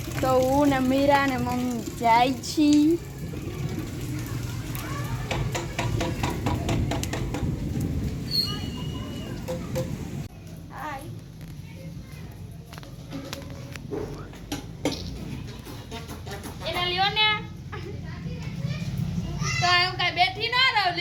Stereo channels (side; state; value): both; identical; correlation 1.00